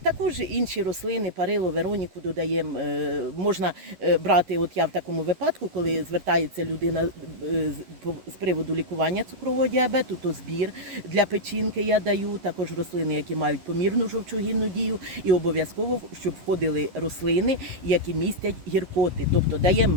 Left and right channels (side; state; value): left; late; 11 ms